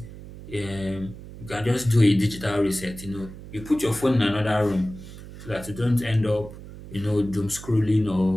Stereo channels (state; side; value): noise; right; hum, 14 dB below the sound